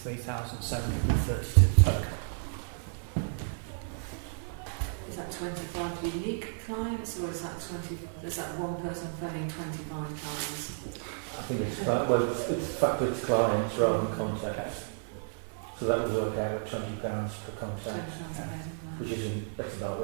3,732 total. Is that 25 unique clients, or is that one person phoning 25 times? I think it's factored to clients rather than contacts. So that would work out at £20 per contact, which that's about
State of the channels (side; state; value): left; silent; digital silence